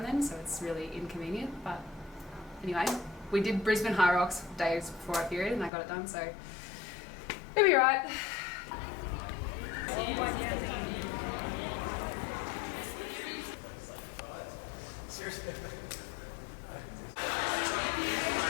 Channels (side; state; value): right; drops out; at 5.7 s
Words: then, so it's really inconvenient. But anyway, we did Brisbane Hyrox days before our period and I got it done, so it'll be alright.